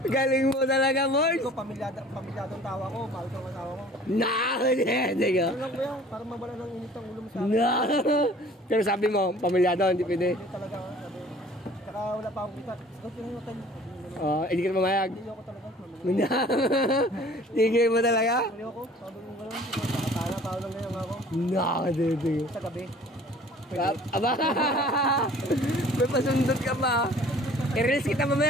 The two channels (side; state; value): both; normal; correlation 0.50